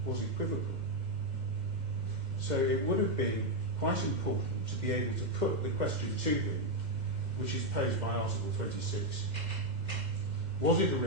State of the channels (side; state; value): left; late; 2.0 ms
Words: was equivocal. So it would have been quite important to be able to put the question to him, which is posed by Article 26. Was it a